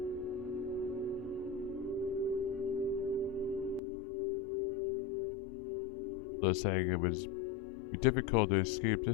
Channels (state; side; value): drops out; right; at 3.8 s